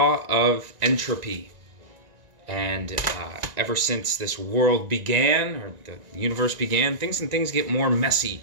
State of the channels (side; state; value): left; late; 1.9 ms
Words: of entropy. And ever since this world began, or the universe began, things get more messy.